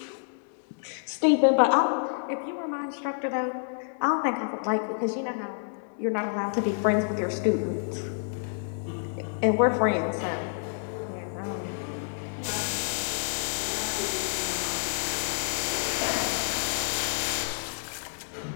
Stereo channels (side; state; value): right; silent; digital silence